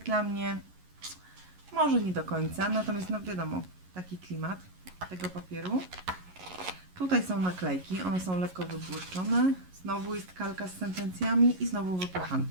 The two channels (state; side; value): late; left; 11 ms